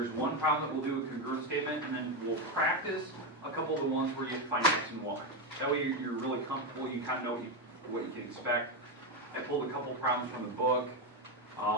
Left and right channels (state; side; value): normal; both; correlation 0.10